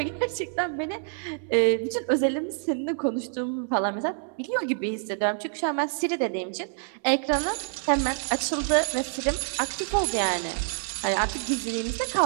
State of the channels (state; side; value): silent; left; 60 dB below the other